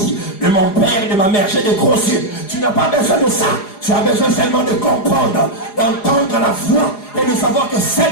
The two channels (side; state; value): right; late; 4.8 ms